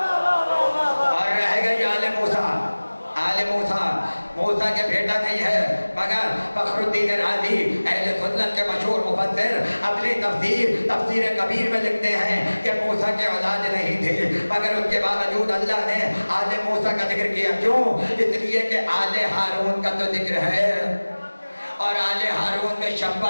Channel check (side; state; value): both; inverted; correlation -1.00